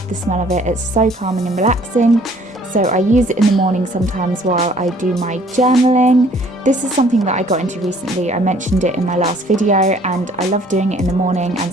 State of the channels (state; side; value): normal; both; correlation 0.57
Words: the smell of it. It's so calming and relaxing. So I use it in the morning sometimes while I do my journaling. This is something that I got into recently. I mentioned it in my last video and I love doing it in the morning and